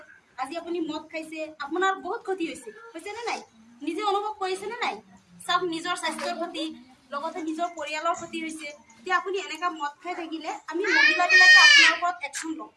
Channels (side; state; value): both; identical; correlation 1.00